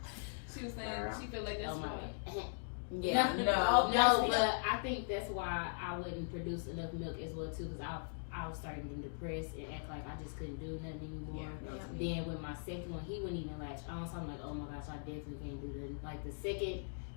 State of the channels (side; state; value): right; silent; digital silence